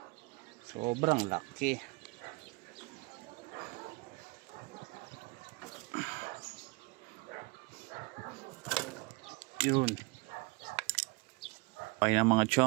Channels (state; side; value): quieter; left; 26.1 dB